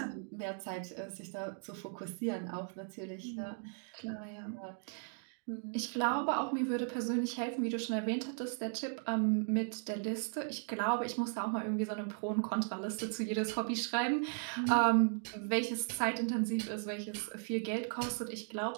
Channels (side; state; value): left; silent; 53 dB below the other